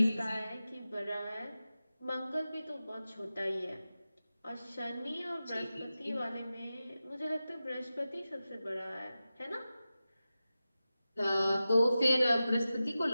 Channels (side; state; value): both; inverted; correlation -0.94